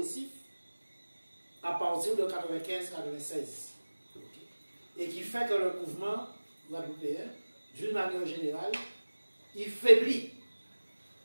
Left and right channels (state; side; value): inverted; both; correlation -1.00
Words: à partir de 95-96. Et qui fait que le mouvement guadeloupéen, d'une manière générale, il faiblit.